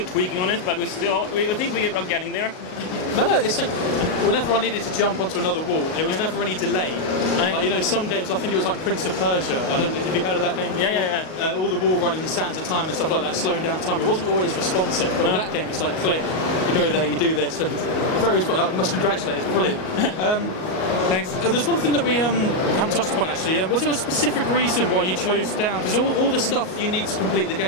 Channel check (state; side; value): late; right; 38 ms